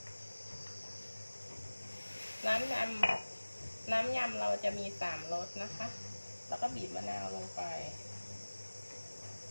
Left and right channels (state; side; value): inverted; both; correlation -1.00